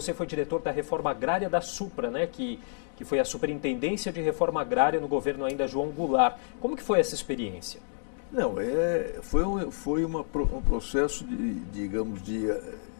foi diretor da Reforma Agrária da Supra, né? Que foi a Superintendência de Reforma Agrária no governo ainda João Goulart. Como que foi essa experiência? Não, foi um processo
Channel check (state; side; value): silent; right; digital silence